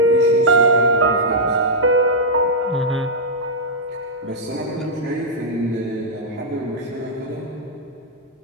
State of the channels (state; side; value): normal; both; correlation -0.08